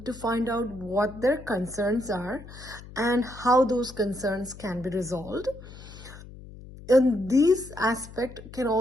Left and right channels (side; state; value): left; noise; hum, 16 dB below the sound